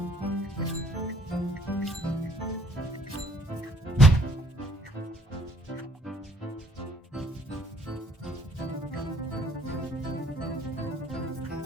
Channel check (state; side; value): normal; both; correlation 0.59